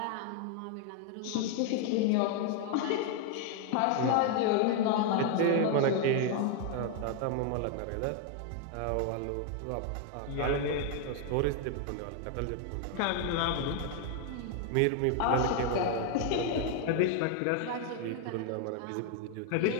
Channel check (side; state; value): both; different; correlation 0.00